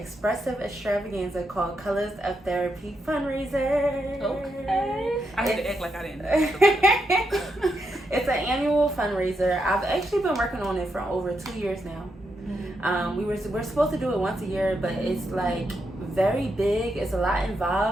extravaganza called Colors of Therapy fundraiser. Okay. I had to act like I didn't know. It's an annual fundraiser. I've actually been working on it for over 2 years now. We're supposed to do it once a year, but it's like very big. It's a lot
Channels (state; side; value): normal; both; correlation 0.82